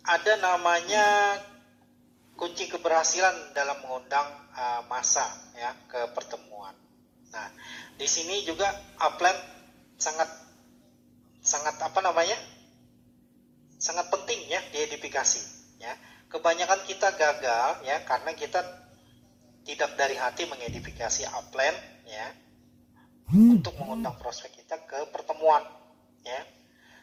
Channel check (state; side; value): identical; both; correlation 1.00